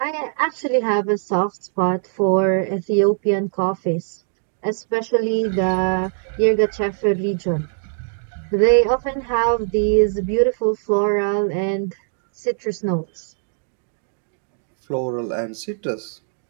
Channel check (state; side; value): silent; left; digital silence